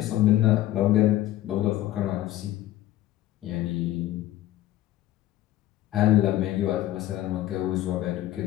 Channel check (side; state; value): right; quieter; 14.2 dB